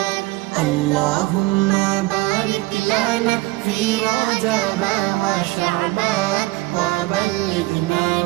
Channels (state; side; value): quieter; left; 20.7 dB